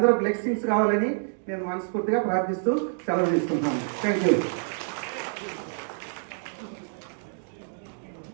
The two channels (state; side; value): silent; left; digital silence